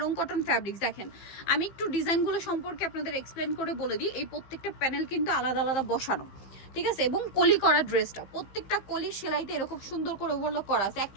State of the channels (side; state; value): right; late; 15 ms